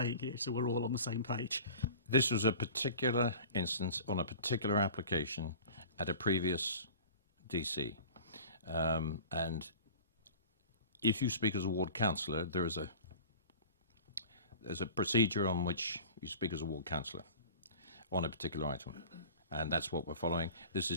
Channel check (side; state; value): both; inverted; correlation -0.40